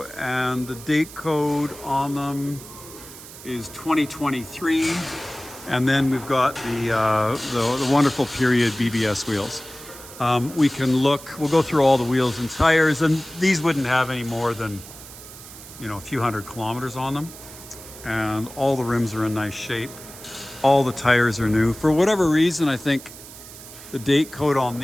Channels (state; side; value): noise; right; hiss, 16 dB below the sound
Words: and the date code on them is 2023. And then we've got the wonderful period BBS wheels. We can look, we'll go through all the wheels and tires, and these wouldn't have any more than, you know, a few hundred kilometers on them. And all the rims are in nice shape. All the tires are new. For whatever reason, I think the date code on